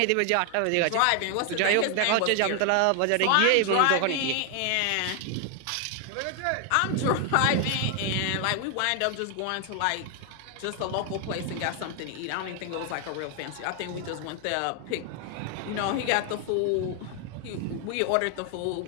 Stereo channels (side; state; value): both; different; correlation 0.00